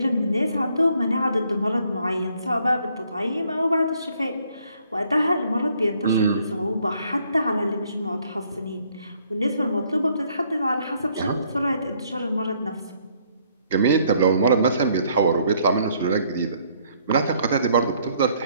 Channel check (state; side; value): inverted; both; correlation -0.66